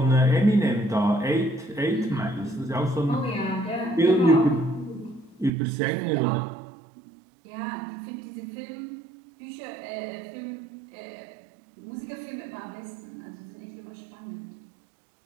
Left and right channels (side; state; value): left; drops out; at 5.5 s